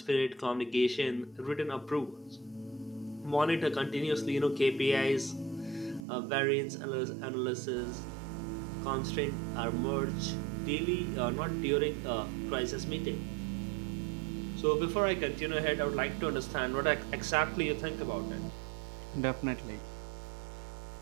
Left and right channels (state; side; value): drops out; left; at 6.1 s